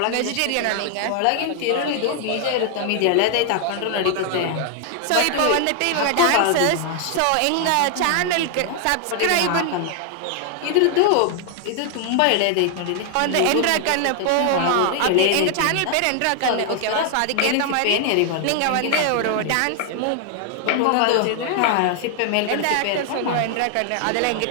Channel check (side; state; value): both; different; correlation 0.00